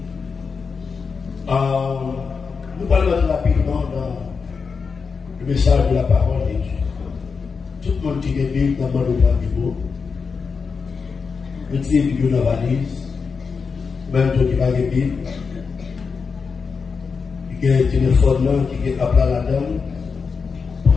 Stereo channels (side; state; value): right; quieter; 5.3 dB